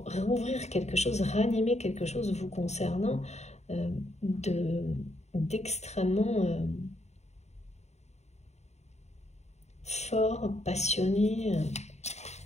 quelque chose, ranimer quelque chose vous concernant d'extrêmement fort, passionné,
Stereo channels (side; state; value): right; late; 0.32 ms